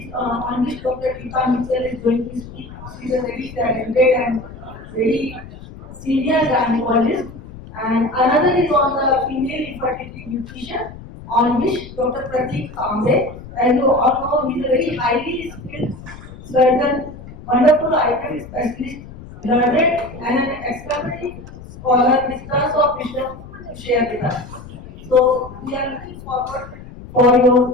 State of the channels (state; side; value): noise; left; rumble, 16 dB below the sound